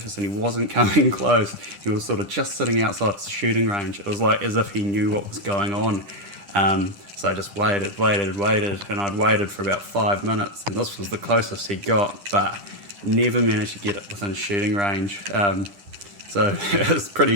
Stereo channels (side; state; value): left; late; 10 ms